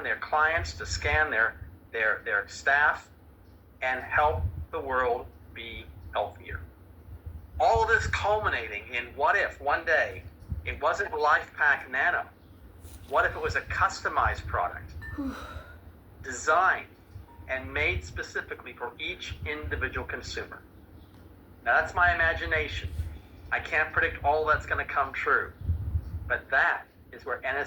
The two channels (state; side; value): identical; both; correlation 1.00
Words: their clients, to scan their staff, and help the world be healthier. All of this culminating in what if one day it wasn't LifePak Nano? What if it was a customized product, designed and made specifically for each individual consumer? Now that's my imagination. I can't predict all that's going to come true, but that is where